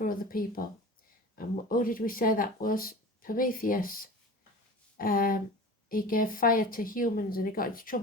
other people. And who did we say that was? Prometheus. He gave fire to humans and he got into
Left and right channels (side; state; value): both; normal; correlation 0.36